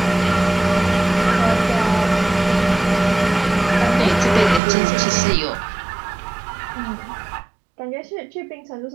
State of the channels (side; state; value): left; drops out; at 4.6 s